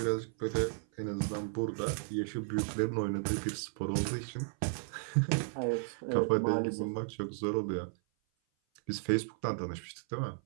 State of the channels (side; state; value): left; silent; 55 dB below the other